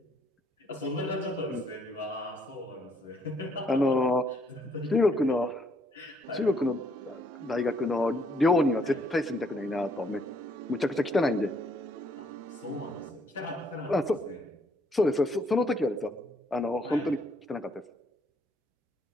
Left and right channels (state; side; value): normal; both; correlation 0.69